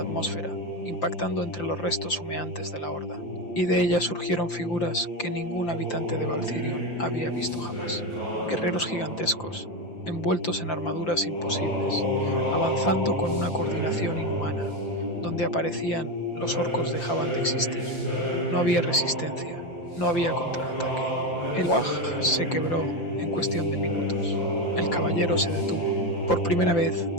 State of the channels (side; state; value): right; late; 5.8 ms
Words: impactando entre los restos humeantes de la horda, y de ellas surgieron figuras que ningún habitante de Valcirion había visto jamás. Guerreros gigantescos, envueltos en armaduras imposibles, avanzando con una coordinación inhumana. Donde aparecían, los orcos dejaban de existir. No había resistencia, no había contraataque. El Waj se quebró en cuestión de minutos. El caballero se detuvo. Por primera vez